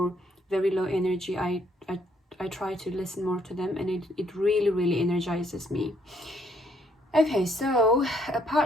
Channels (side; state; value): both; normal; correlation 0.69